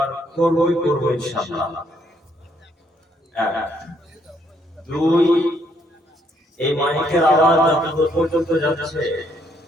করবই করবো ইনশাআল্লাহ। দুই, এই মাইকের আওয়াজ যতদূর পর্যন্ত যাচ্ছে,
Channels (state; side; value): normal; both; correlation 0.70